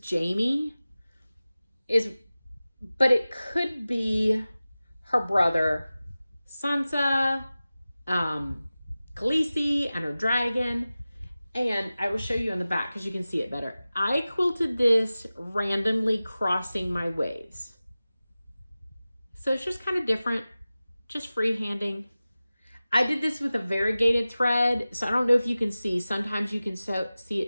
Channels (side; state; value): both; inverted; correlation -0.96